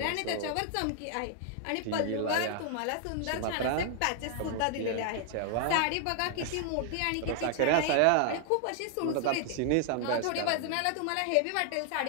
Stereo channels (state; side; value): different; both; correlation 0.00